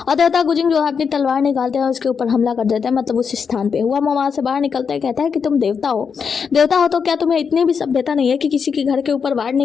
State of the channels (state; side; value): quieter; right; 6.2 dB